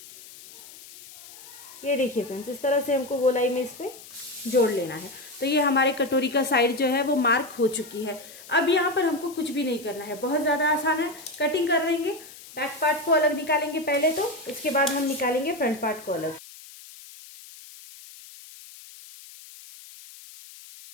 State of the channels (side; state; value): left; noise; hiss, 18 dB below the sound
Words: ये देखिए फ्रेंड्स, इस तरह से हमको गोलाई में इस पे जोड़ लेना है। तो ये हमारे कटोरी का साइड जो है वो मार्क हो चुकी है। अब यहाँ पर हमको कुछ भी नहीं करना है, बहुत ज्यादा आसान है। कटिंग कर देंगे, बैक पार्ट को अलग निकालेंगे पहले, तो इसके बाद हम निकालेंगे फ्रंट पार्ट को अलग।